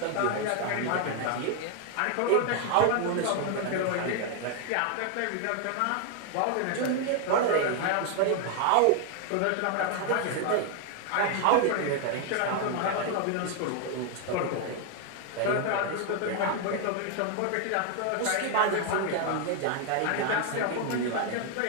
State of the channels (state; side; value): different; both; correlation 0.00